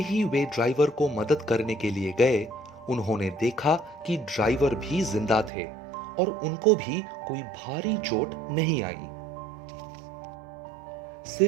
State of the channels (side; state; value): left; drops out; at 5.5 s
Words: वे ड्राइवर को मदद करने के लिए गए, उन्होंने देखा कि ड्राइवर भी जिंदा थे और उनको भी कोई भारी चोट नहीं आई।